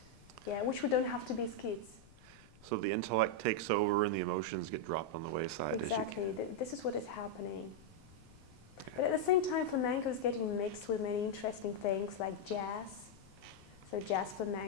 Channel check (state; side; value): noise; left; rumble, 24 dB below the sound